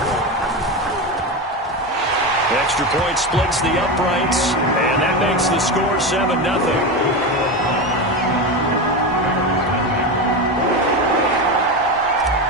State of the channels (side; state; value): both; normal; correlation 0.18